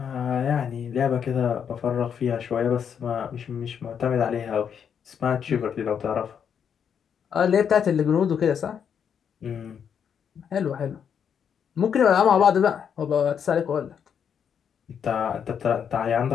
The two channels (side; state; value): right; quieter; 7.7 dB